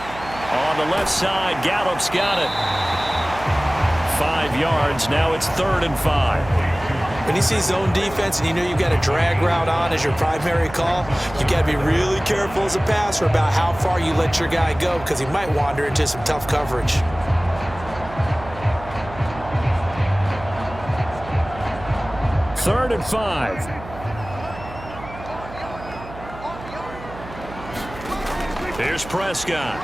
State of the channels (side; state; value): right; noise; hum, 15 dB below the sound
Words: On the left side, Gallup's got it. 5 yards. Now it's 3rd and 5. When you see zone defense and you know you've got a drag route on as your primary call, you got to be really careful as a passer about how far you let your guy go because he might wander into some tough coverage. Third and 5. Here's Prescott.